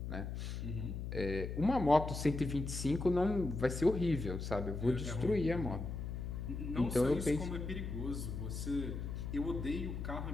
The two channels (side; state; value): left; noise; hum, 5 dB below the sound